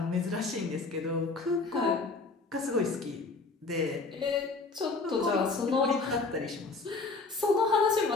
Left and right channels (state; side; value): quieter; right; 3.9 dB